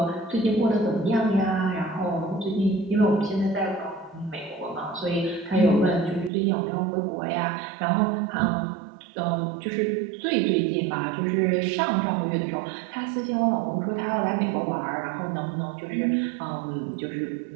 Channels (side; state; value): left; drops out; at 6.3 s